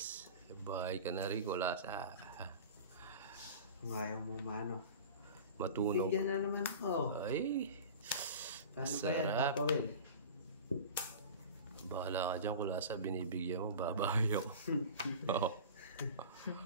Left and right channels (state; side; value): inverted; both; correlation -0.36